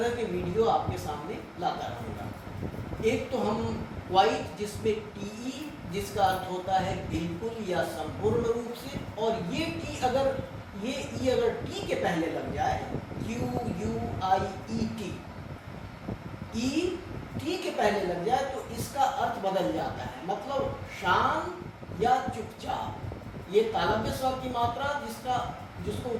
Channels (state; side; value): identical; both; correlation 1.00